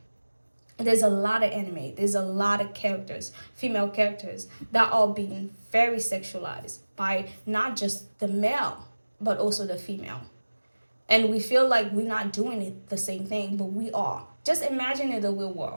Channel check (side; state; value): both; inverted; correlation -1.00